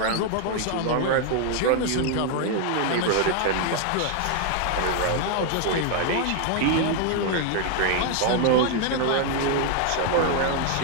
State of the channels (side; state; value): both; different; correlation 0.00